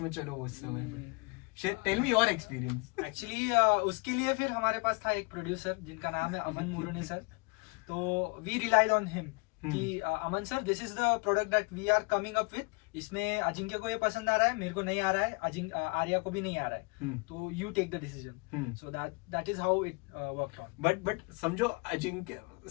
में चलो उस समय पे? Tell me your experience. Actually उसके लिए फिर हमारे पास था एक प्रोड्यूसर जिनका नाम है अमन मुरुने सर. तो वी रिलाइड ऑन हिम कि Aman sir, this is the product that we are coming up with. इसमें अजिंक्य को ये पसंद आ रहा है, मेरे को नहीं आ रहा है, आर्या को भी नहीं आ रहा है. तो you take the decision. So that is how it worked on. But समझो अजिंक्य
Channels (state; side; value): quieter; right; 29.5 dB